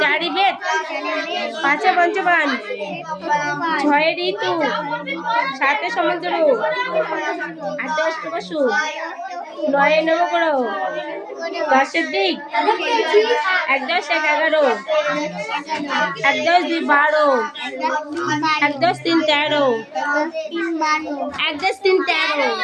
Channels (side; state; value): both; identical; correlation 1.00